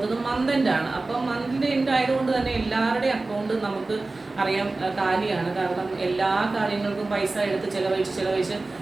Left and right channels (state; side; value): quieter; left; 3.3 dB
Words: മന്ത് എൻഡ് ആണ്. അപ്പം മന്തിൻ്റെ എൻഡ് ആയതുകൊണ്ട് തന്നെ എല്ലാവരുടെയും അക്കൗണ്ട് നമുക്ക് അറിയാം കാലിയാണ്. കാരണം എല്ലാ കാര്യങ്ങൾക്കും പൈസ എടുത്ത് ചിലവഴിച്ച്